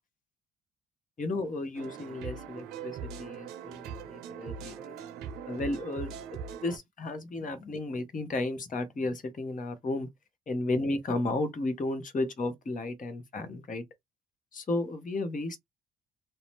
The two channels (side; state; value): both; normal; correlation 0.71